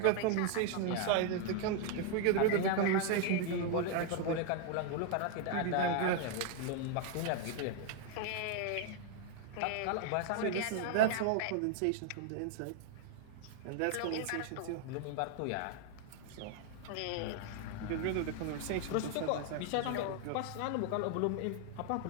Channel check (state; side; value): different; both; correlation 0.00